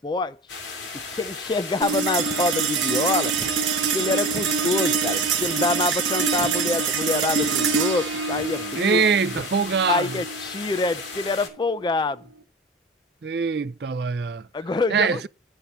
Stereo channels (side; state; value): both; normal; correlation 0.32